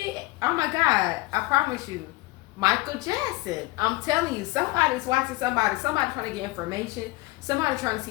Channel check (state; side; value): quieter; right; 20.8 dB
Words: Oh my God, I promise you. Michael Jackson. I'm telling you, somebody's watching somebody. Somebody trying to get information. Somebody trying to